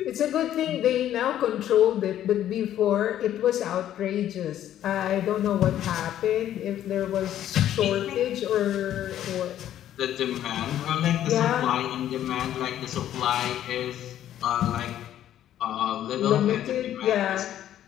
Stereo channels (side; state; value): right; quieter; 11.6 dB